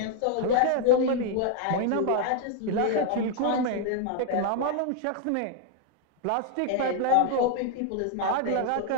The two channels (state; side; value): different; both; correlation 0.00